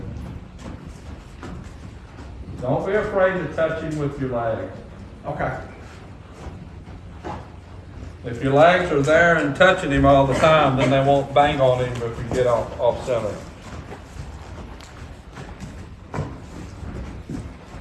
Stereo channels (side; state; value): both; identical; correlation 1.00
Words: go. Don't be afraid to touch him with your legs. Okay. If your legs are there and touching him all the time, then they won't bang on him if you get off center.